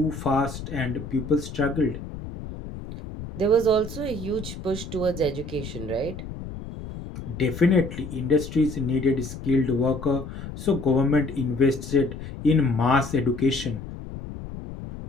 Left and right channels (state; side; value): noise; left; rumble, 10 dB below the sound